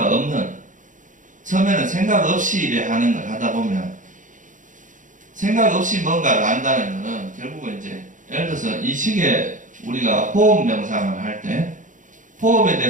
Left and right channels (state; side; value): late; left; 0.37 ms